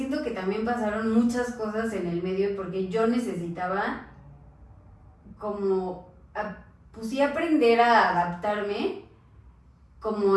que también pasaron muchas cosas en el medio y porque yo necesitaba como, pues sí, aprender a adaptarme como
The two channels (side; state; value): both; identical; correlation 1.00